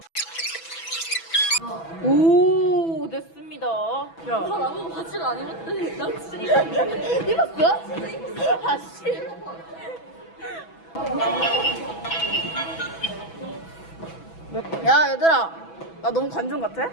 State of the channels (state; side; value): late; right; 6.1 ms